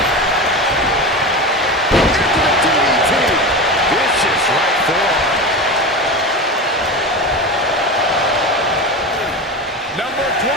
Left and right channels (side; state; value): both; normal; correlation 0.25